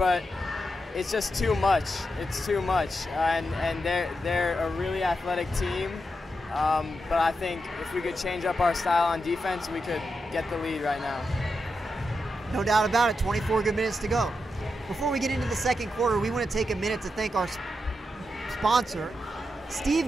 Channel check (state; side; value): normal; both; correlation 0.86